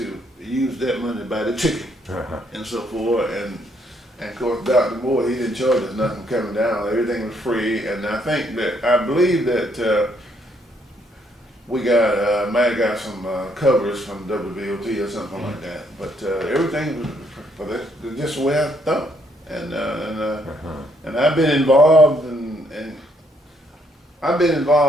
use that money to buy the chicken and so forth. And of course, Dr. Moore, he didn't charge us nothing coming down. Everything was free. And I believe that we might have got some covers from WBOT or something like that. But everything was just the way I thought. And I've been involved in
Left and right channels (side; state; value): both; normal; correlation 0.71